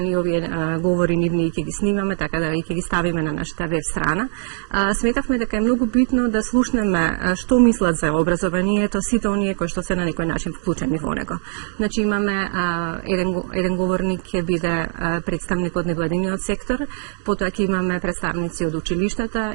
овие говори нивни ќе ги снимаме, така да ќе ги ставиме на нашата веб страна. Сметавме дека е многу битно да слушнеме што мислат за образованието сите оние кои што се на некој начин вклучени во него. Значи имаме еден говорник ќе биде представник од невладиниот сектор, потоа ќе имаме представници од училиштата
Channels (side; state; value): left; silent; digital silence